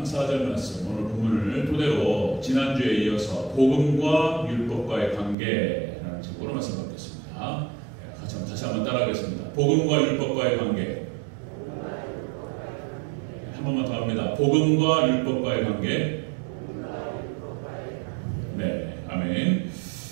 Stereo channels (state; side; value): drops out; left; at 5.4 s